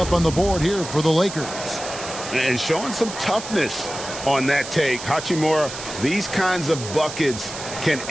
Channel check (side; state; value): right; noise; hiss, 10 dB below the sound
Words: on the board here for the Lakers. And showing some toughness on that take. Hachimura, these kinds of buckets can